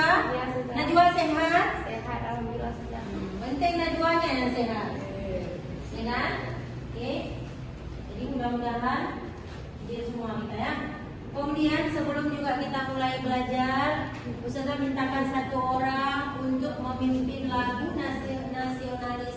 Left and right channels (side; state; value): both; identical; correlation 1.00